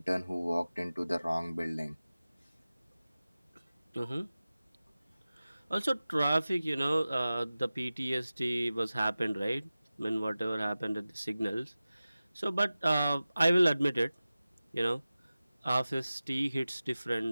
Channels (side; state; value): both; inverted; correlation -0.96